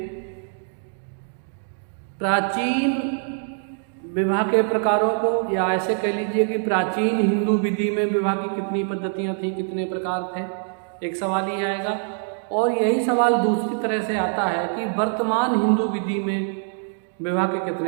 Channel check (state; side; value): silent; left; 62 dB below the other